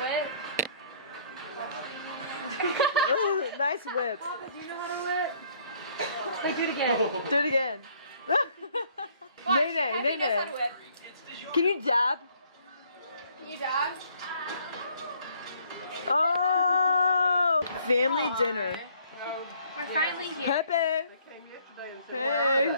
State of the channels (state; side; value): inverted; both; correlation -0.62